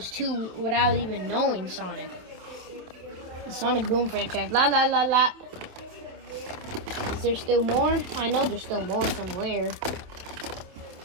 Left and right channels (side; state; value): left; late; 27 ms